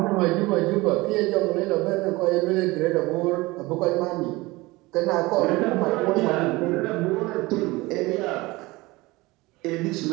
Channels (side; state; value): left; quieter; 21.6 dB